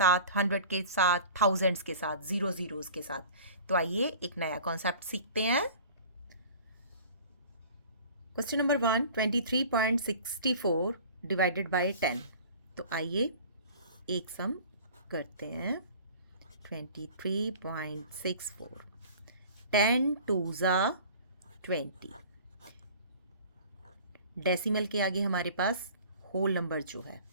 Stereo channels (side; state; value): both; inverted; correlation -0.44